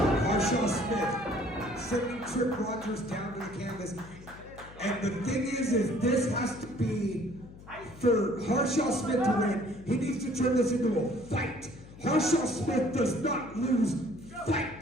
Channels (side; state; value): left; noise; hum, 18 dB below the sound